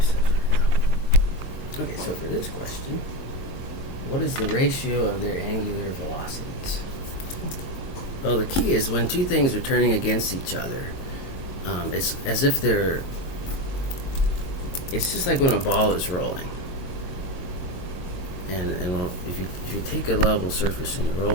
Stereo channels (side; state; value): right; late; 22 ms